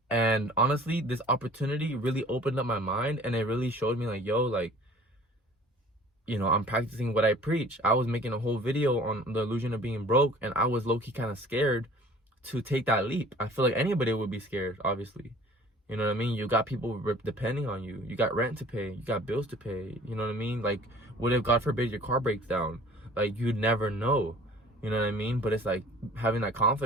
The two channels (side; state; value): both; normal; correlation 0.49